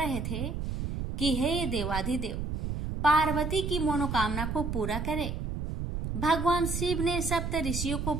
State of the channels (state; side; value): noise; right; rumble, 3 dB below the sound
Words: थे कि हे देवाधिदेव, पार्वती की मनोकामना को पूरा करे। भगवान शिव ने सप्त ऋषियों को